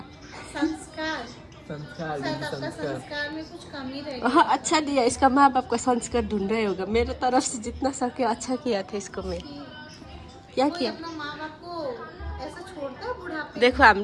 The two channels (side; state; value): both; identical; correlation 1.00